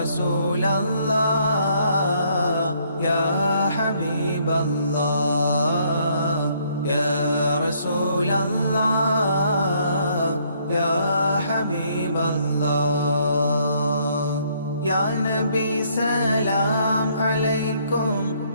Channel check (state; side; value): inverted; both; correlation -0.67